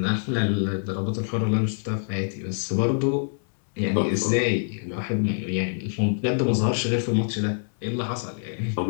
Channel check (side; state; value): right; silent; digital silence